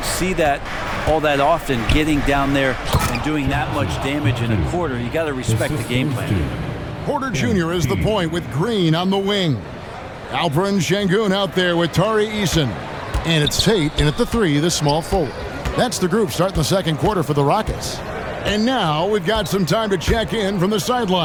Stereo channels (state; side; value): identical; both; correlation 1.00